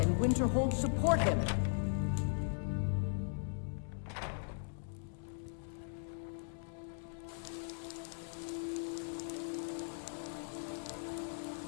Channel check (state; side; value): silent; right; digital silence